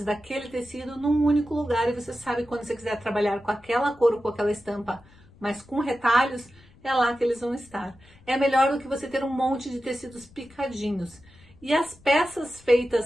daquele tecido num único lugar, e você sabe quando você quiser trabalhar com aquela cor ou com aquela estampa, mas com retalhos, é lá que eles vão estar. É melhor do que você ter um monte de tecidos picadinhos. E as peças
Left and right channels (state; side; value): noise; left; rumble, 26 dB below the sound